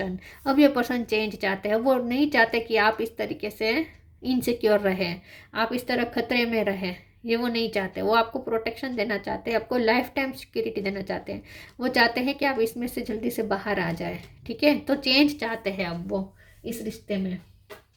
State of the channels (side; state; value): both; identical; correlation 1.00